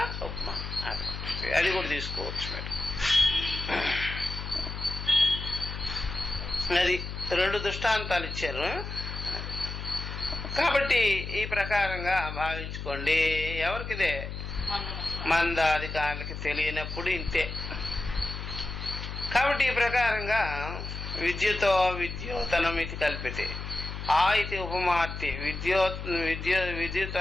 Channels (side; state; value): left; noise; hum, 7 dB below the sound